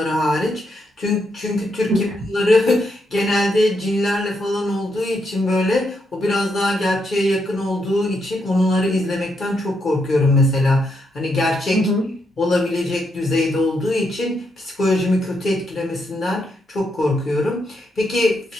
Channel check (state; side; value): normal; both; correlation 0.80